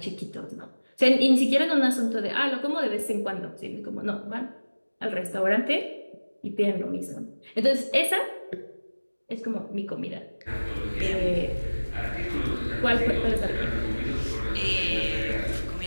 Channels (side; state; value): both; inverted; correlation -1.00